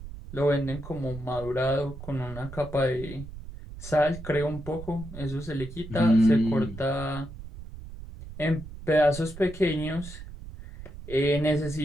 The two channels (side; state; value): right; noise; rumble, 13 dB below the sound